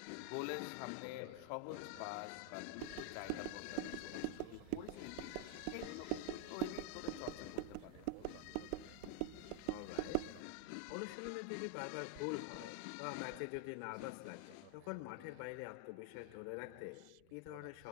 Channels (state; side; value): different; both; correlation 0.00